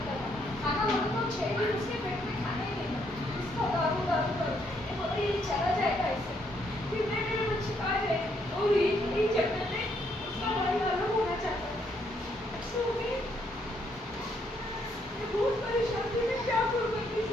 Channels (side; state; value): both; normal; correlation 0.73